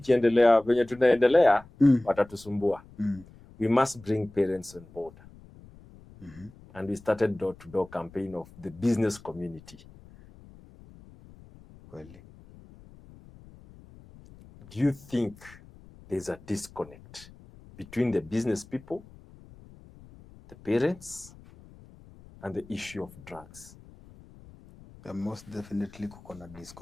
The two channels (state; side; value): noise; left; rumble, 22 dB below the sound